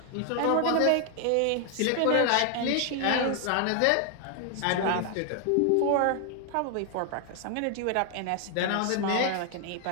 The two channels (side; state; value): both; different; correlation 0.00